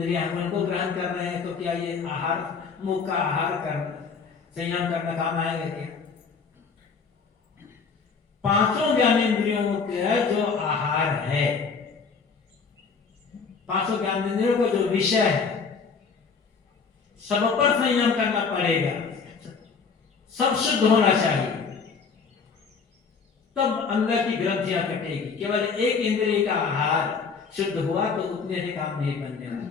उनको ग्रहण कर रहे हैं, तो क्या ये आहार, मुख का आहार कर संयम करना काम आएगा क्या? पांचों ज्ञानेंद्रियों का जो आहार है, पांचों ज्ञानेंद्रियों का जो विषय है, सब पर संयम करना पड़ेगा, सब शुद्ध होना चाहिए, तब अंदर की ग्रंथियां कटेगी। केवल एक इंद्रिय का आहार शुद्ध हुआ तो उतने से काम नहीं बनने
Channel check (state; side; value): quieter; right; 5.3 dB